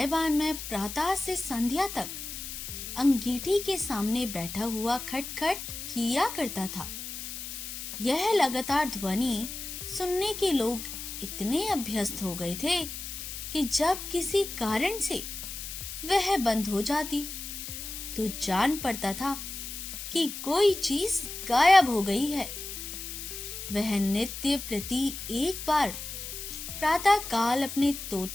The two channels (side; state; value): left; noise; hiss, 8 dB below the sound